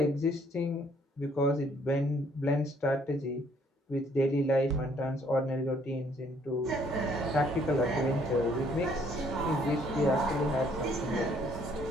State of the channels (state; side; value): normal; both; correlation 0.64